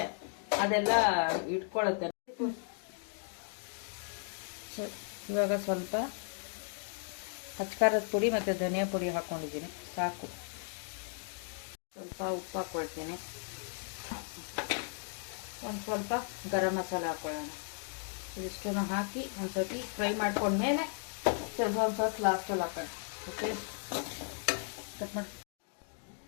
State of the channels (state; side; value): silent; right; 54 dB below the other